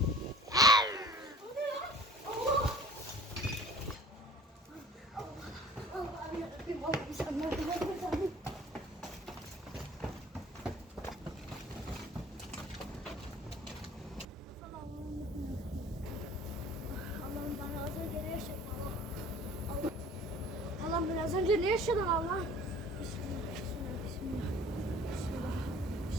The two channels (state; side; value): normal; both; correlation 0.47